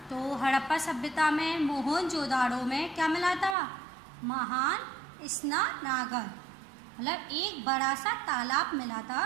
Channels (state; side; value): drops out; left; at 3.6 s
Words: तो हड़प्पा सभ्यता में मोहनजोदाड़ो में क्या मिला था? महान स्नानागार, मतलब एक बड़ा सा तालाब मिला था